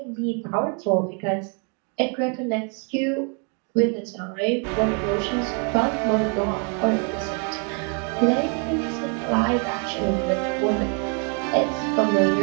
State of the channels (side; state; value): left; quieter; 37.9 dB